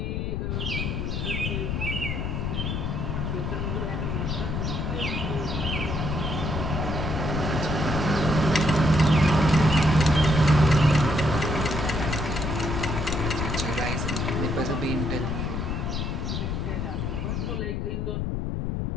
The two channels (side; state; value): left; noise; rumble, 1 dB below the sound